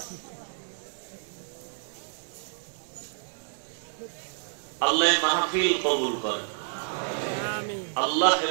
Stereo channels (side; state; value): left; silent; 58 dB below the other